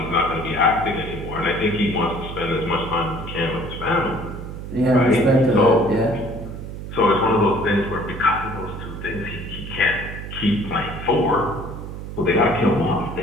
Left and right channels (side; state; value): right; noise; hum, 9 dB below the sound